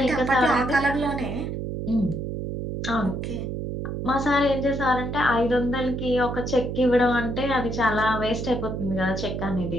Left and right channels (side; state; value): right; noise; hum, 4 dB below the sound